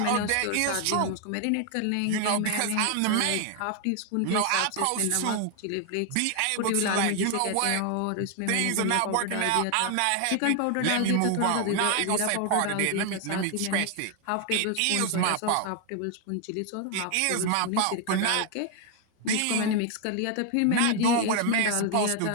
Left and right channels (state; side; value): different; both; correlation 0.00